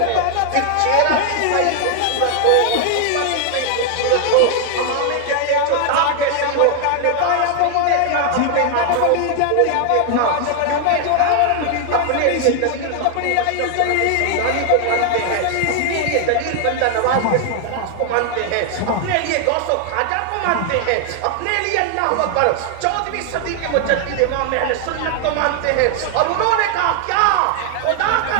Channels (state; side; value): different; both; correlation 0.00